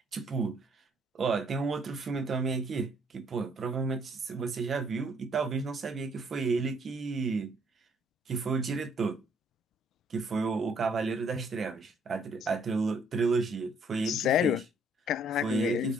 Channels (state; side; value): normal; both; correlation 0.65